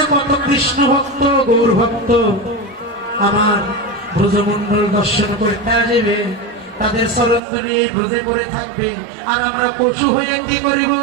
কত কৃষ্ণ ভক্ত গৌর ভক্ত আমার ব্রজমন্ডল দর্শন করতে আসবে, তাদের চরণধরি এই ব্রজে করে থাকবে, আর আমরা পশু হয়ে কি করিব?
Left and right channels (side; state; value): left; drops out; at 7.4 s